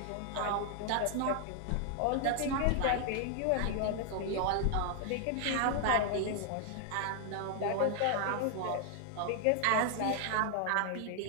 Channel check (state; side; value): different; both; correlation 0.00